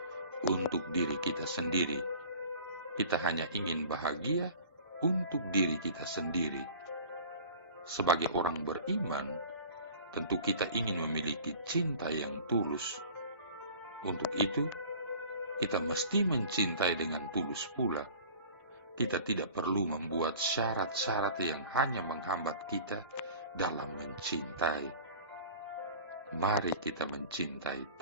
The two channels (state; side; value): inverted; both; correlation -0.43